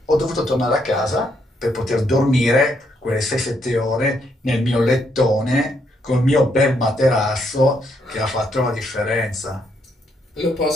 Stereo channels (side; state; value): both; normal; correlation 0.75